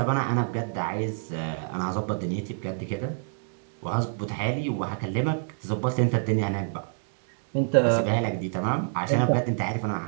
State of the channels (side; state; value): left; silent; digital silence